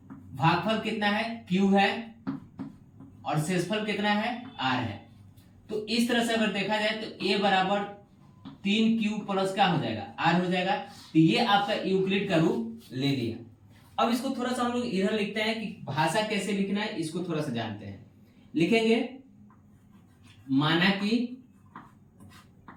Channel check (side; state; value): both; identical; correlation 1.00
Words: भागफल कितना है Q है और शेषफल कितना है R है। तो इस तरह से अगर देखा जाए तो a बराबर 3Q प्लस क्या हो जाएगा, R हो जाएगा। तो ये आपका यूक्लिड का रूप ले लिया। अब इसको थोड़ा सा हम लोग इधर लिखते हैं कि भाषा कैसे लिखना है, इसको थोड़ा सा जानते हैं। लिखेंगे माना